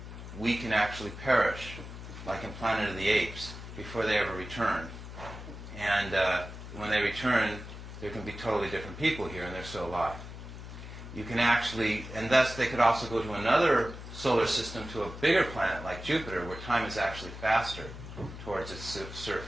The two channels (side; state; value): left; noise; hum, 11 dB below the sound